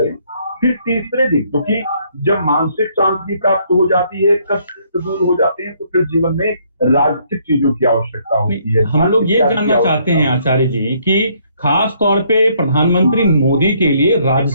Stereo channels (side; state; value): both; inverted; correlation -0.67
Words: फिर तीसरे दिन, क्योंकि जब मानसिक शांति प्राप्त हो जाती है, कष्ट दूर हो जाते हैं, तो फिर जीवन में राजसिक चीजों की आवश्यकता होती है। हम लोग ये जानना चाहते हैं आचार्य जी कि खास तौर पे प्रधानमंत्री मोदी के लिए